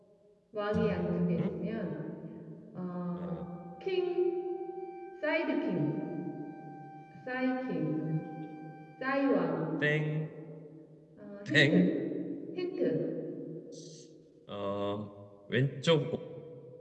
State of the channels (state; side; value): identical; both; correlation 1.00